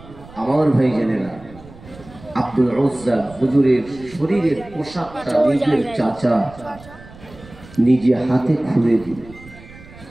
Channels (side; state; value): right; noise; rumble, 20 dB below the sound